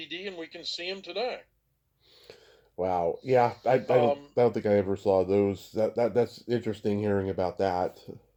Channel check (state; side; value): identical; both; correlation 1.00